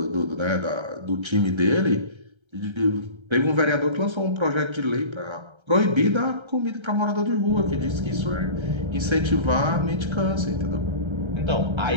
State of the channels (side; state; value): left; late; 1.3 ms